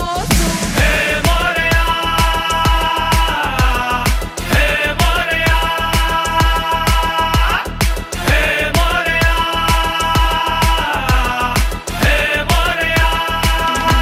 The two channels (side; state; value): both; identical; correlation 1.00